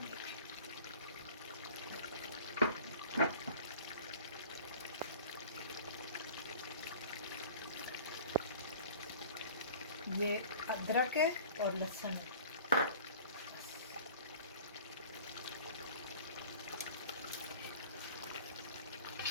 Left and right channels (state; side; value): inverted; both; correlation -0.44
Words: ये अदरक है और लहसुन है।